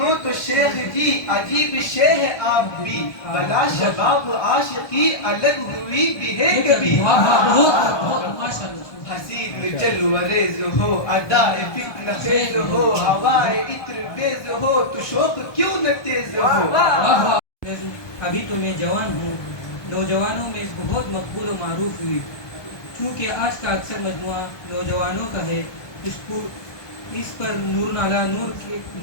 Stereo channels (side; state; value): right; late; 1.2 ms